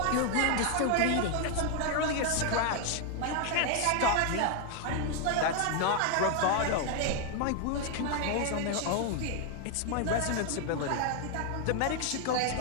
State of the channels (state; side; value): different; both; correlation 0.00